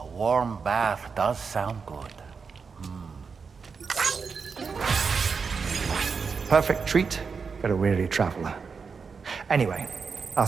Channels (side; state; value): left; quieter; 5.4 dB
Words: warm bath does sound good. Perfect treat for a weary traveler. Anyway, I'll